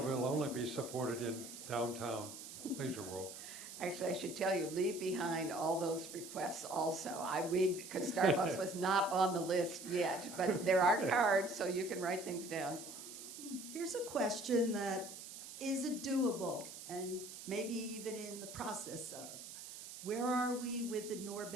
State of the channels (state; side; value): noise; right; hiss, 12 dB below the sound